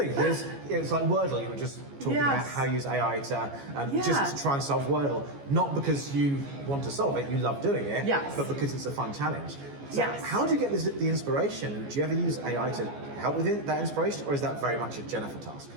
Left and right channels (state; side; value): late; left; 14 ms